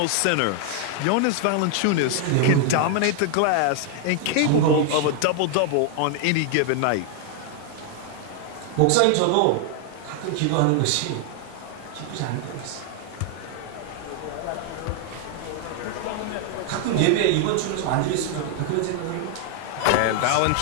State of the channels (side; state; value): both; different; correlation 0.00